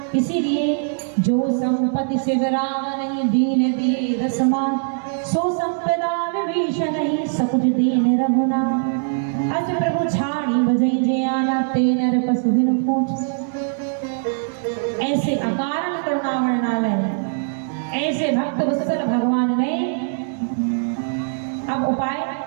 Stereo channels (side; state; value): left; silent; digital silence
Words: इसीलिए जो संपत्ति से विराम नहीं, दीन दिए दसमान, सो संपदा विभीषण नहीं, सकुच दीन रघुना। अस प्रभु छाड़ी बजई जे आना, ते नर पशु बिनु पूछ। ऐसे अकारण करुणा वर्णालय, ऐसे भक्त वत्सल भगवान ने अब उपाय